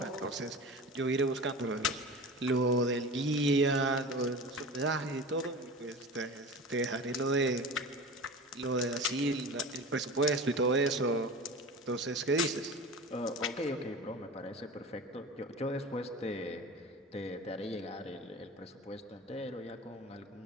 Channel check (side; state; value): both; normal; correlation 0.33